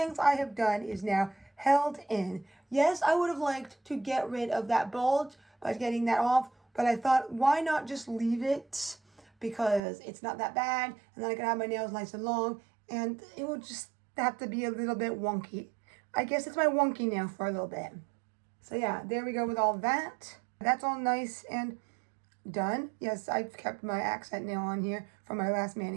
I have done is now held in. Yes, I would have liked to get rid of that bulge by getting that off, but I thought, why not just leave it? Because it's not that bad, and then I can have my nails nice and long, and it will just have to be a little bit wonky. I guess it's my wonky nail for a little bit. So yeah, there we go with all that. That's all nice and done. Yes, I've kept my accent nail on here from my last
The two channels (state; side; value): drops out; left; at 9.8 s